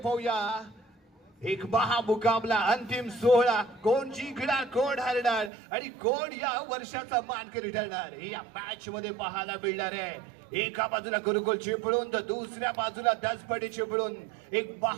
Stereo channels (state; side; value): drops out; left; at 5.5 s